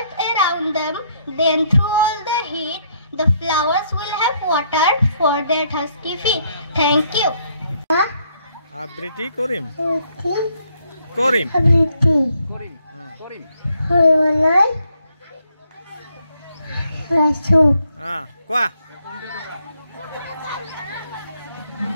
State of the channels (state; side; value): inverted; both; correlation -0.71